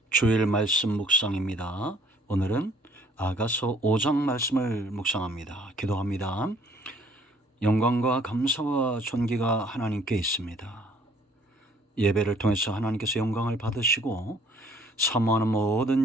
주일 말씀 묵상입니다. 오늘은 아가서 5장 말씀을 묵상합니다. 기도합니다. 영광과 감사와 존귀가 하나님께 있습니다. 예배를 통해서 하나님께서 영광을 받으시고 사모하는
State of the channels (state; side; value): normal; both; correlation 0.59